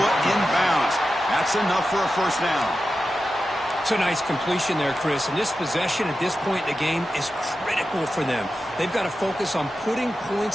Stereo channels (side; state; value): both; normal; correlation 0.92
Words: in bounds. That's enough for a 1st down. It's a nice completion there, Chris. And this possession at this point in the game is critical for them. They've got to focus on putting